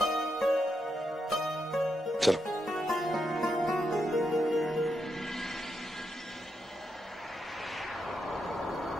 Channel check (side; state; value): both; normal; correlation 0.82